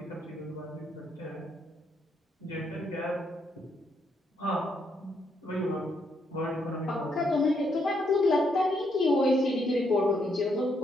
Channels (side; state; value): both; normal; correlation 0.75